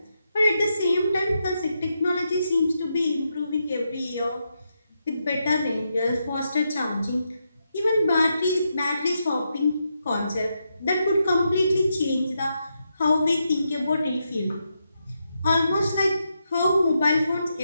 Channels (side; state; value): both; inverted; correlation -0.83